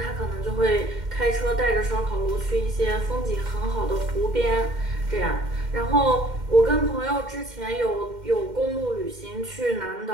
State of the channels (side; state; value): left; late; 2.1 ms